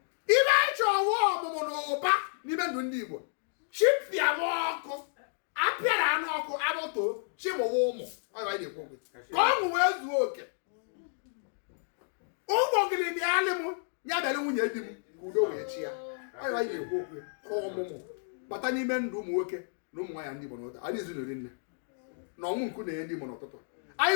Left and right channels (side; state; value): right; silent; digital silence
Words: ibe anyị chọọ ọwụ ọmụmụ na ụba n'ime ndụ ndị Igbo chipịa m ọkụ apịara anụ ọkụ abụtoo chimụwa ụmụ ọ ibe anyị na-ekwu ka ọṅụ wee zuo oke ụmụ ogiri bịalị m ya bịara nwunye di m ka udo wee chi ya ọ ibe anyị na-ekwu okwu ka ọmụmụ bata n'ime ndụ ụmụ nwoke na ụmụ nwaanyị ndị Igbo n'ụtụtụ anyị ezinụlọ nne na ọnwụ nku na-enye ndị Igbo n'ụtụtụ anyị